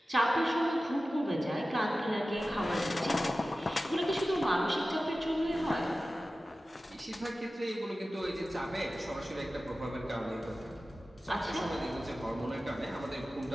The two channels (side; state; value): both; normal; correlation 0.95